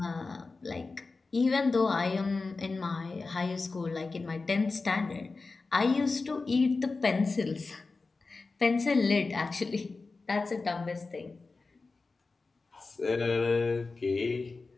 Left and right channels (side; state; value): right; quieter; 3.9 dB